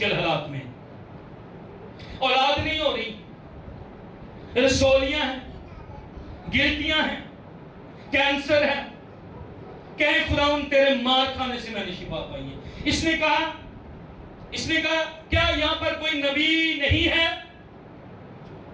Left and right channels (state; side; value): identical; both; correlation 1.00